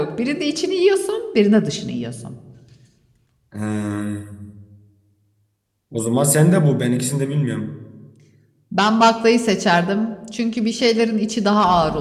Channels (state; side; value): identical; both; correlation 1.00